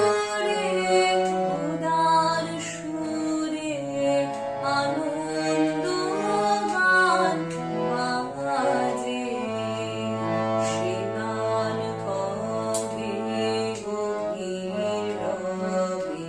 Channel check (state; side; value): identical; both; correlation 1.00